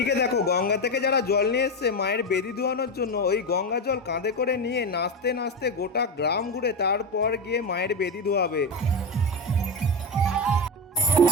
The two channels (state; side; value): normal; both; correlation 0.15